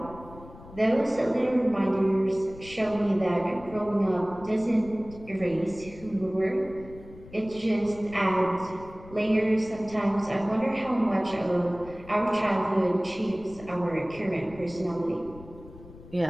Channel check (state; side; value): noise; left; rumble, 18 dB below the sound